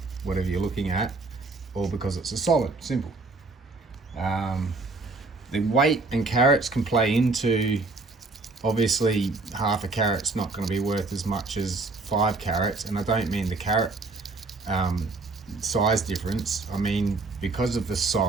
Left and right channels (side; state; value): left; quieter; 3.5 dB